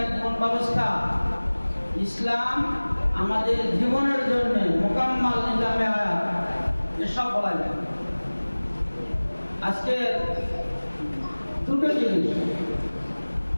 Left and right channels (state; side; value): inverted; both; correlation -1.00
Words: এক জীবন ব্যবস্থা, ইসলাম আমাদের জীবনের জন্য মোকাম্মাল নিজামে হায়াত, এসব বলা যায়। আজকে দুটো জিনিস,